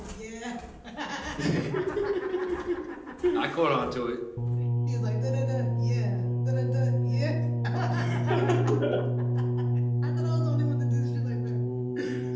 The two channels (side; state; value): both; identical; correlation 1.00